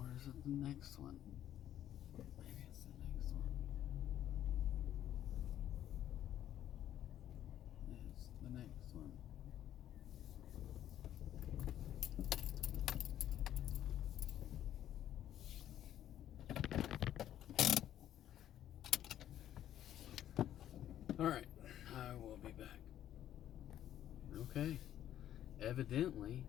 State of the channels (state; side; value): quieter; right; 11.5 dB